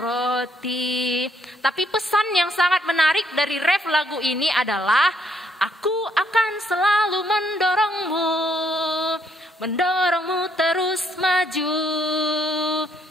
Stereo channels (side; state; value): both; normal; correlation 0.70